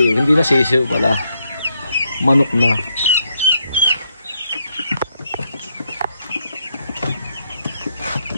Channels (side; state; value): both; inverted; correlation -0.77